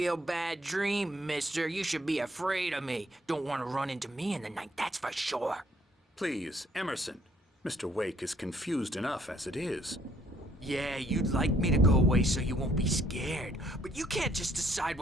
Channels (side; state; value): both; normal; correlation 0.65